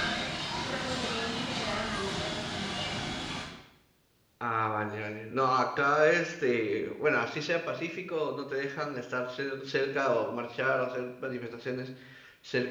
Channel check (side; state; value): both; identical; correlation 1.00